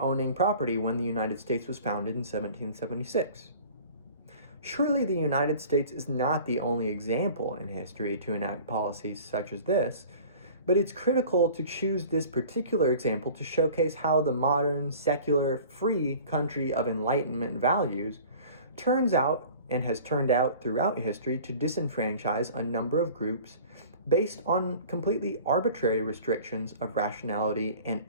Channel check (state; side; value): inverted; both; correlation -0.44